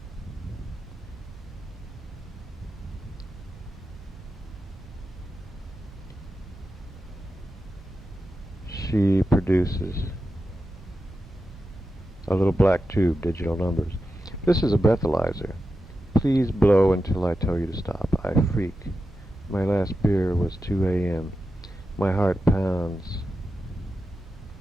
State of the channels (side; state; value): both; normal; correlation 0.90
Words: She produces a little black tube, digital numbers. This is a breathalyzer. Please blow until I tell you to stop. I freak. My last beer was 2 a.m. My heart pounds.